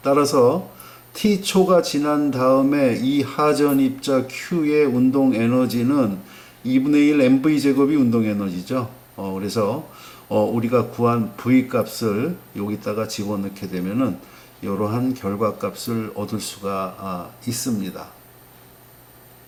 따라서 T초가 지난 다음에 이 하전 입자 Q의 운동 에너지는 2분의 1 MV 제곱이 운동 에너지죠. 그래서 우리가 구한 V 값을 여기다가 집어넣게 되면은 이러한 결과값을 얻을 수가 있습니다.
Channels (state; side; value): identical; both; correlation 1.00